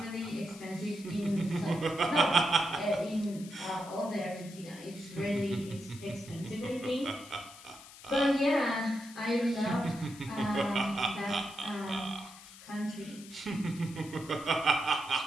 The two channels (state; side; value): noise; left; hiss, 18 dB below the sound